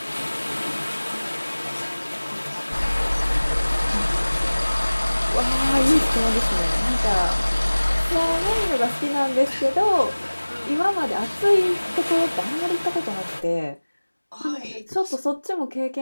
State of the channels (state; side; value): inverted; both; correlation -1.00